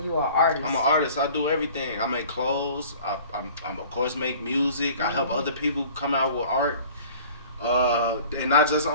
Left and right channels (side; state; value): both; inverted; correlation -0.47